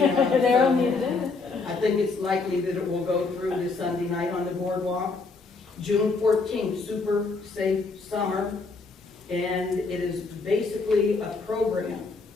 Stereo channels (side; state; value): right; quieter; 4.1 dB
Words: They're on the agenda. I think it's likely that it will go through this Sunday night on the boardwalk. June 14th, Super Safe Summer, and it is basically a program